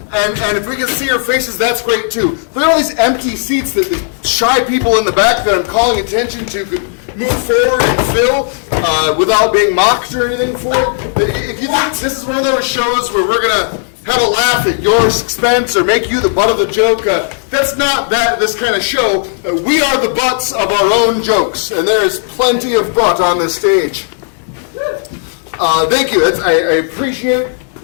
and if we can see your faces, that's great too. Look at all these empty seats that the shy people in the back that I'm calling attention to could move forward and fill without being mocked or anything for it. If you think this is one of those shows where we're going to have a laugh at your expense or make you the butt of the joke, that's not this kind of show. We are the butts of our own jokes, and there is plenty of butt on this stage. Thank you. I appreciate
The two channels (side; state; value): right; silent; digital silence